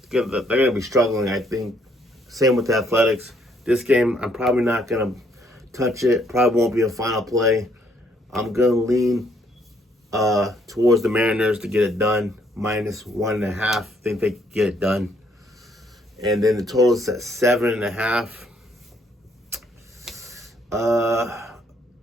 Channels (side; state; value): both; normal; correlation 0.68